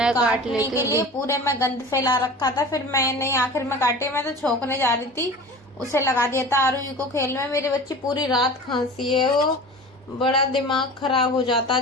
काटने के लिए। पूरे में गंद फैला रखा था, फिर मैंने आखिर में काटे। मैं तो छोंकने जा रही थी, उसे लगा दिया था आरूही को खेल में। मेरी बच्ची पूरी रात खांसी है, वो बड़ा दिमाग खराब हो जाता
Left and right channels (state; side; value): normal; both; correlation 0.37